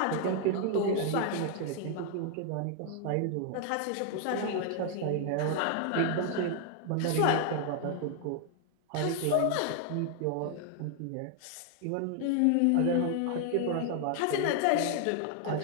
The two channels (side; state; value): both; different; correlation 0.00